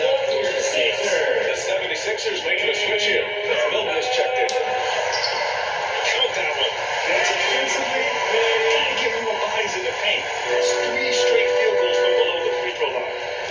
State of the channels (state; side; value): identical; both; correlation 1.00